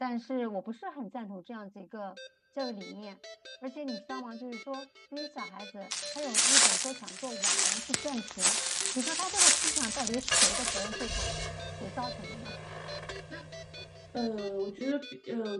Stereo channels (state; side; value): identical; both; correlation 1.00